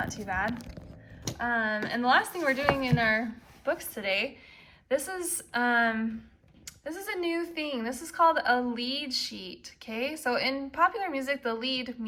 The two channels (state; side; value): identical; both; correlation 1.00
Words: too bad. And the last thing we're doing in our books today, this is a new thing. This is called a lead sheet, okay? So in popular music, the lead